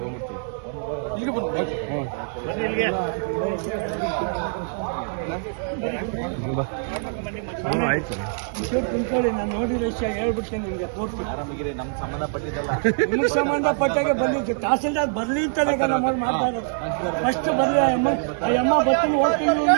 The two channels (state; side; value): silent; left; digital silence